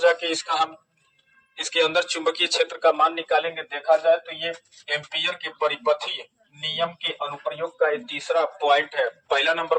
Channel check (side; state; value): both; identical; correlation 1.00